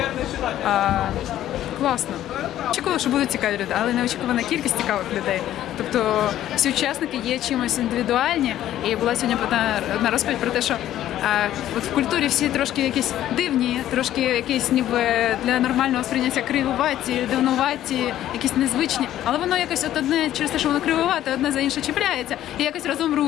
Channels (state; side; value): quieter; right; 12.6 dB